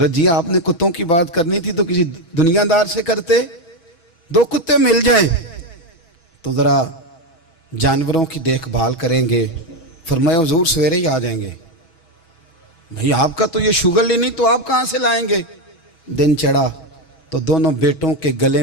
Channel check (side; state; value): right; late; 6.2 ms